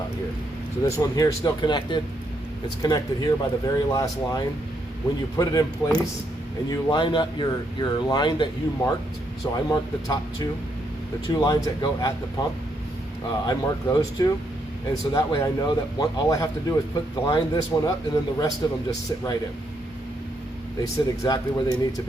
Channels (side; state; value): both; normal; correlation 0.77